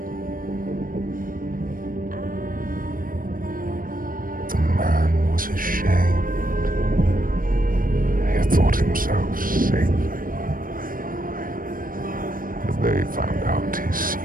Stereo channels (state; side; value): late; left; 0.41 ms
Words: The man was ashamed. He had thought himself safe. But they found out his